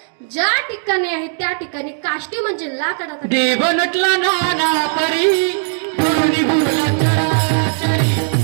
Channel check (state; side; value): silent; left; digital silence